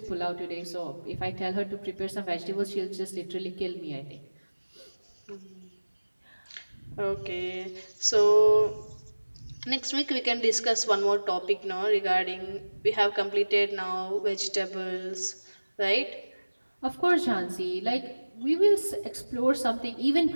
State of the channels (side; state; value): both; inverted; correlation -1.00